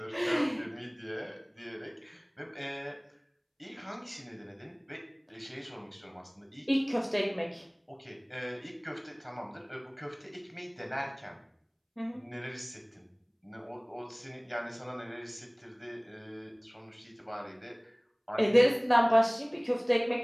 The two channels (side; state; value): both; identical; correlation 1.00